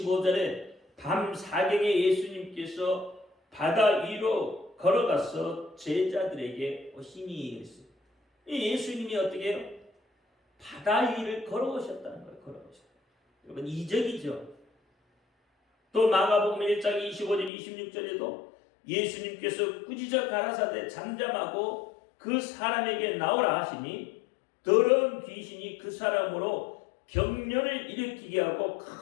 밤 사경에 예수님께서 바다 위로 걸어가서 제자들에게 오시니 했어요. 예수님이 어떻게 해요? 바다 위를 걸어오셨다는 거예요. 걸어오셨다. 여러분 이적이죠. 또 마가복음 1장 25절 26절에도 예수님께서 꾸짖어 가라사대 잠잠하고 그 사람에게 나오라 하시니 더러운 귀신이 그 사람으로 병련을 일으키게 하고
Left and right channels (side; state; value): right; drops out; at 17.5 s